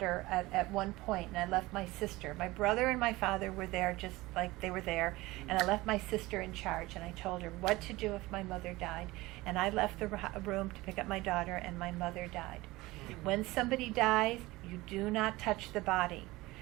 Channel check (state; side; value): quieter; left; 20.0 dB